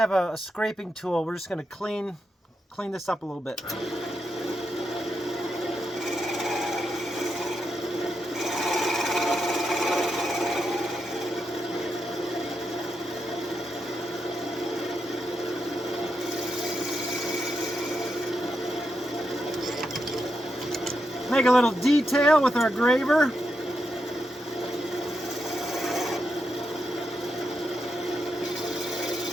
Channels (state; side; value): normal; both; correlation 0.84